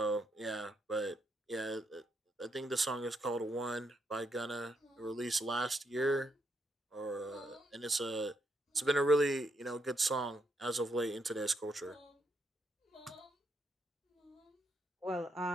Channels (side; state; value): both; normal; correlation 0.78